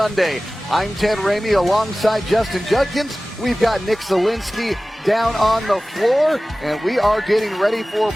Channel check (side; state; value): both; normal; correlation 0.97